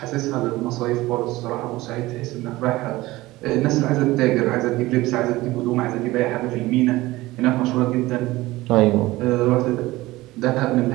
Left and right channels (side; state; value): left; quieter; 18.8 dB